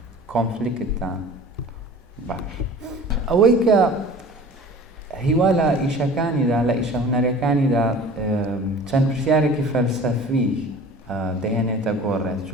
کۆنفلیکتدا باش. ئەوەی کە هیوا لە ئیشەکانیدا، لە ئیشە هونەرەکانیدا چەند پرسیارێکی فەلسەفی دەهێنێتە گۆڕێت،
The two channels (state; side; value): normal; both; correlation 0.43